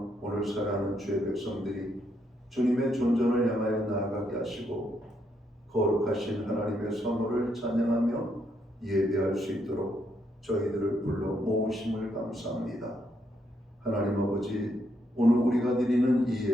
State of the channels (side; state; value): both; normal; correlation 0.76